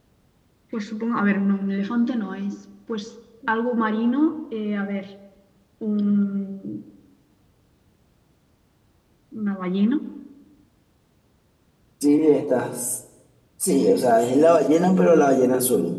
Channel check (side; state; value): both; identical; correlation 1.00